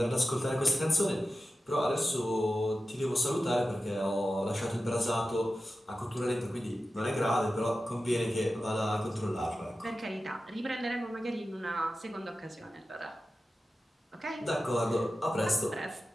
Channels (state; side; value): normal; both; correlation 0.93